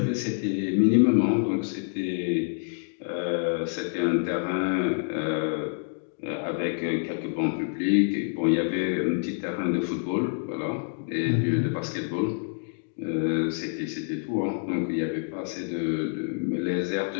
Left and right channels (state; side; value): silent; right; digital silence